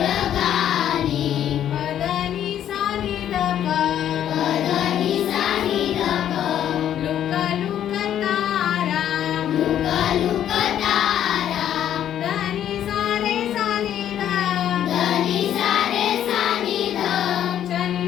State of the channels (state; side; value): quieter; right; 10.5 dB